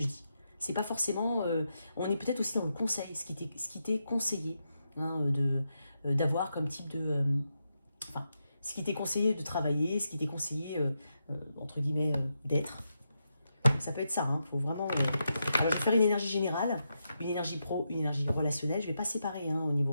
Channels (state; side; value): inverted; both; correlation -0.85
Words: dis. C'est pas forcément. On est peut-être aussi dans le conseil, ce qui t'est conseillé hein, d'avoir comme type de. Enfin, ce qui t'est conseillé de travailler, ce qui t'est conseillé, entre guillemets, d'être. Ça peut être ça, hein, faut vraiment... Alors, je vais faire une énergie générale, une énergie pro, une énergie relationnelle. Je ne vais pas séparer hein, au